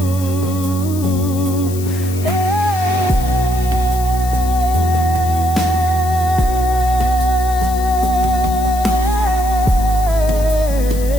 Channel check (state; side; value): noise; left; hiss, 14 dB below the sound